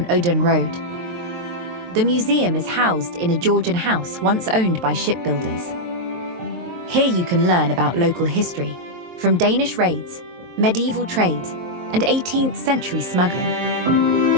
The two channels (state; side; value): late; left; 23 ms